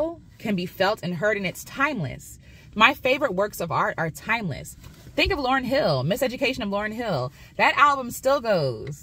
can be felt and heard, and it's timeless. My favorite works of art are timeless. Think of Lauryn Hill, Miseducation of Lauryn Hill. That album still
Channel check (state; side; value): identical; both; correlation 1.00